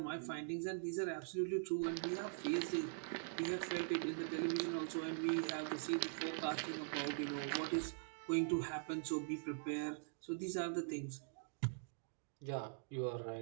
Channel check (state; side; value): silent; left; digital silence